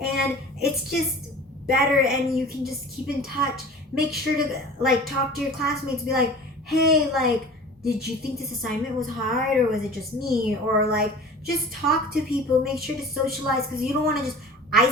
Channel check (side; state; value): both; normal; correlation 0.40